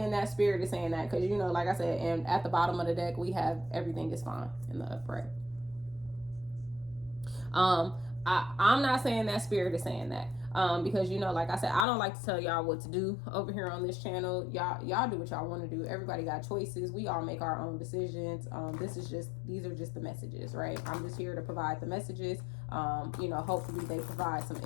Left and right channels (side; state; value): right; drops out; at 11.9 s